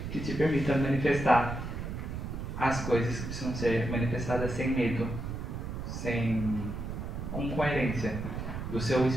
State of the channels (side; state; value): right; noise; rumble, 5 dB below the sound